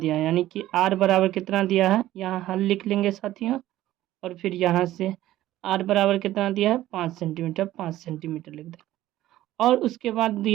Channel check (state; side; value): quieter; left; 14.5 dB